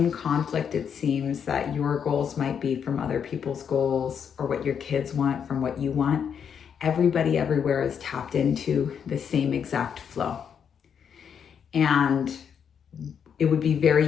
conflict it seems that your goals might be from other people's goals, or what your kids want from what you want, everybody everywhere is tapped into the same exact flow. And it would be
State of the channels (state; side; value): quieter; right; 7.6 dB